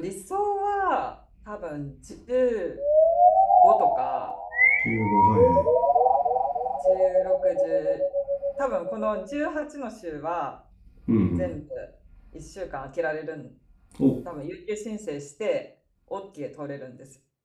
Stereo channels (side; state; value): both; identical; correlation 1.00